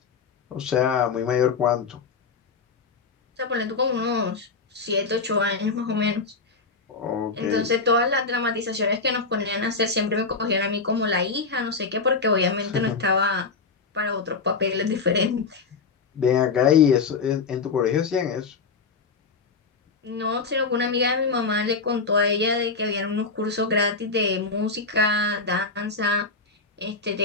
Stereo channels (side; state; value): right; quieter; 4.5 dB